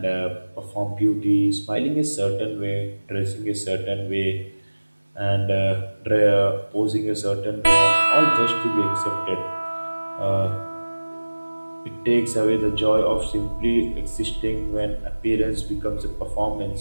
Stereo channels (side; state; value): both; inverted; correlation -1.00